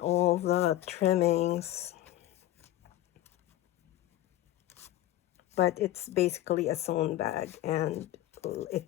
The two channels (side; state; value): right; quieter; 14.4 dB